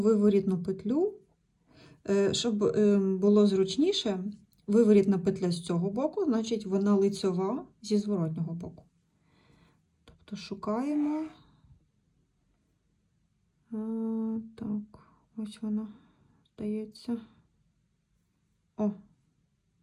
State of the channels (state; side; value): identical; both; correlation 1.00